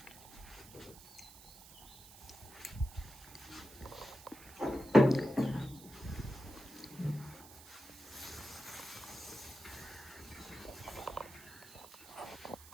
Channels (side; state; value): right; noise; hiss, 18 dB below the sound